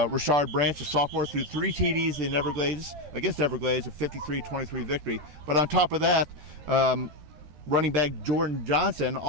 Richard Branch, a sophomore, threw 3 TDs in Everglades against Everglades, a 53-23 victory. But on top of that, running back Jordan Johnson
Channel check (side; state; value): left; late; 13 ms